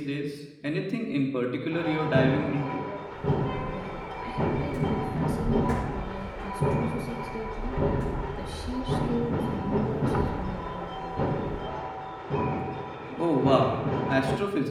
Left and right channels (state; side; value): identical; both; correlation 1.00